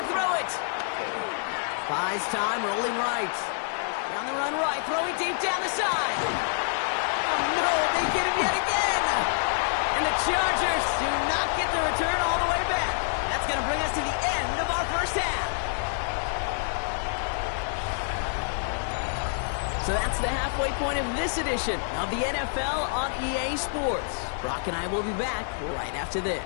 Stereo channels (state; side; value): silent; right; digital silence